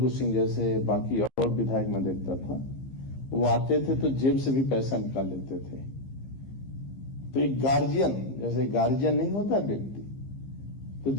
सिंह जैसे, बाकी और विधायक मैं देखता था, वो आते थे तो जेब से भी पैसा निकाल लेते थे। तो एक गार्जियन, जैसे गार्जियन नहीं होता व्यक्ति, तो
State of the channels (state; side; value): late; right; 15 ms